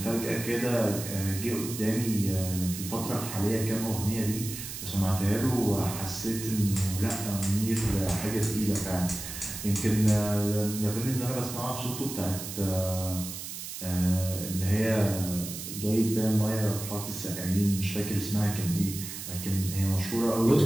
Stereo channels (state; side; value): noise; right; hiss, 8 dB below the sound